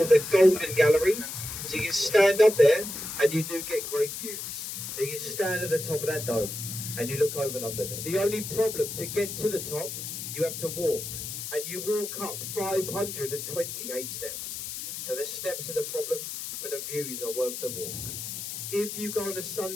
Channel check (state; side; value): noise; left; hiss, 7 dB below the sound